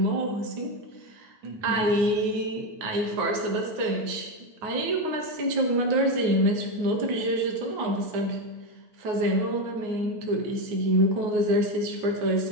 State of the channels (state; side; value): late; left; 9.5 ms